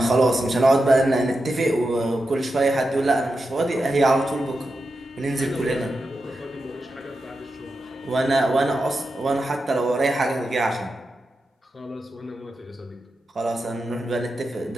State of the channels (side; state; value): both; normal; correlation 0.89